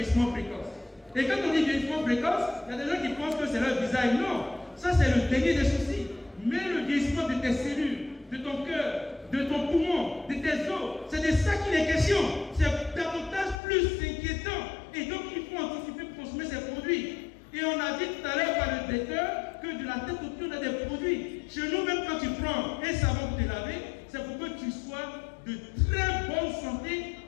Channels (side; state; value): right; drops out; at 13.6 s